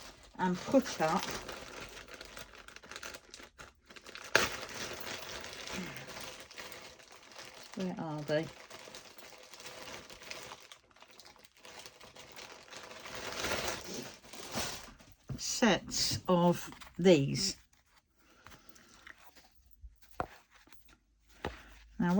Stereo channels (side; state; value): both; identical; correlation 1.00